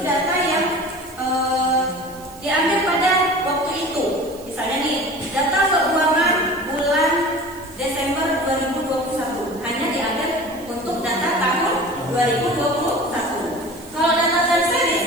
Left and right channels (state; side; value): noise; right; hiss, 21 dB below the sound